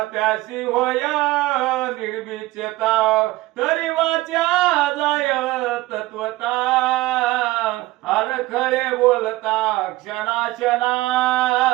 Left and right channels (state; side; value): quieter; left; 18.6 dB